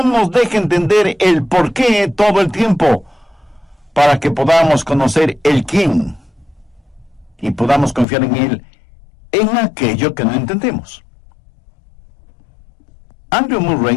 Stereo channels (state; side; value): drops out; right; at 8.1 s